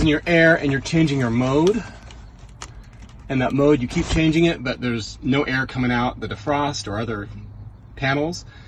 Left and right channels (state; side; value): identical; both; correlation 1.00